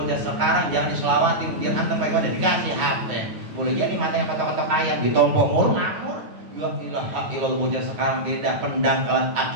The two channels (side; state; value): left; late; 9.5 ms